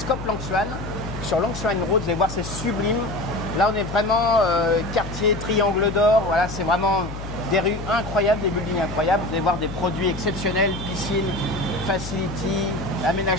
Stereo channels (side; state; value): left; noise; hum, 9 dB below the sound